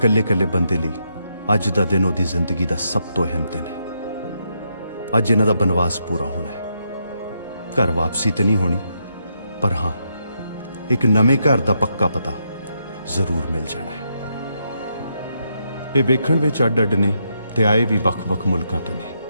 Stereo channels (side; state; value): both; inverted; correlation -0.80